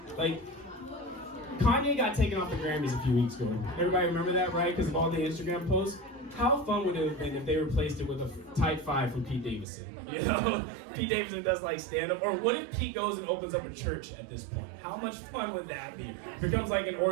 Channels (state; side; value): drops out; left; at 9.7 s